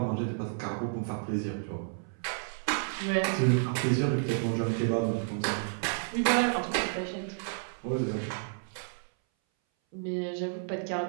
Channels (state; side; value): silent; left; 57 dB below the other